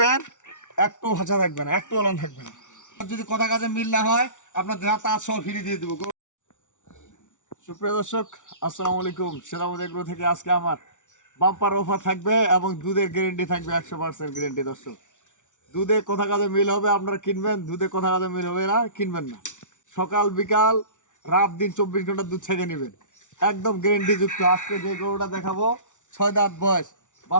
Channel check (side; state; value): right; late; 0.86 ms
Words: একটু ভাষা থাকবে না, একটু অলন থাকবে না। যদি কথা কাজে মিল না হয় আপনার যা তা সব ফিরিয়ে দিয়ে দেবো। সুপ্রিয় দর্শক, আসসালামু আলাইকুম। সেরামতি এগ্রো থেকে আজকে আমার বাম্পার অফার থাকবে এবং দুধের গ্যারেন্টি থাকবে 100% গ্যারেন্টি। দর্শক, দুধে কথা কাজে মিল হবে আপনারা কিনবেন, দুধে কথা কাজে মিল হবে না কিনবেন না। সকাল বিকাল রাত দিন 24 ঘন্টা দুধ ছেঁকে নেবেন, একদম গ্যারেন্টি যুক্ত। আজকে যে গরুটা দেখাবো 6 দাঁত বয়স,